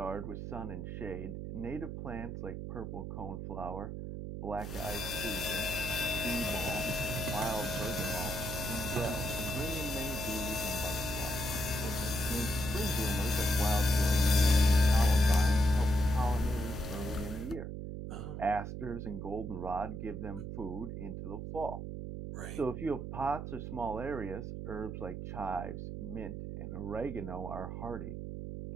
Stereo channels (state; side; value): noise; right; hum, 6 dB below the sound